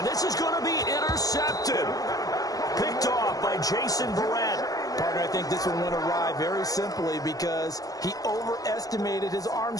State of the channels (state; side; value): late; right; 0.17 ms